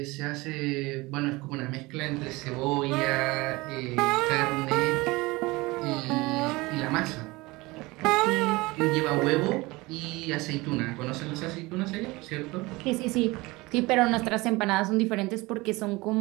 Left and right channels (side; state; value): left; quieter; 22.3 dB